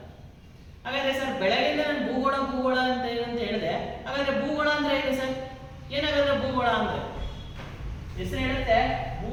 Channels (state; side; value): identical; both; correlation 1.00